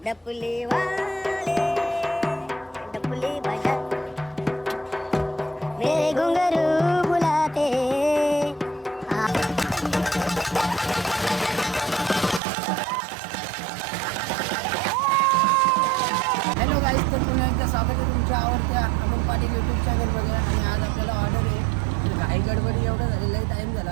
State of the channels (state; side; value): drops out; left; at 12.4 s